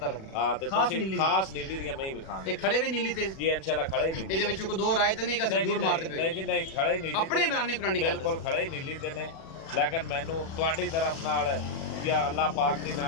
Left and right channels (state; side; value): late; right; 37 ms